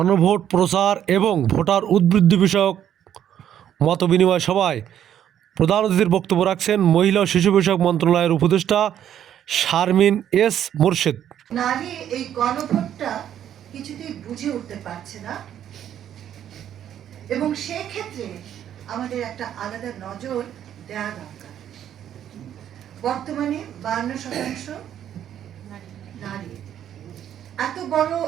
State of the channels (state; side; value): quieter; left; 10.3 dB